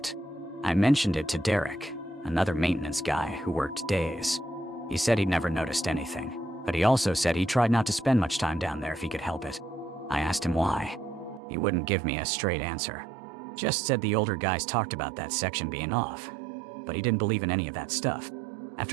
I mentioned it to Derek, another maintenance guy who worked days. He said he'd never noticed anything, but he also said he tried not to spend much time down there if he could help it. I asked him why. He wouldn't give me a straight answer. Just said the older guys talked about that section being off, but he didn't believe in any of that stuff.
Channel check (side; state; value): left; drops out; at 11.4 s